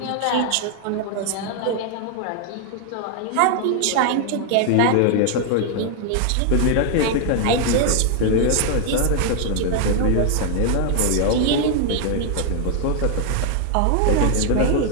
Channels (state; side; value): different; both; correlation 0.00